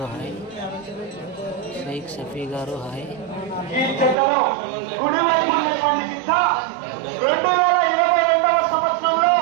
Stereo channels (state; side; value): drops out; left; at 4.2 s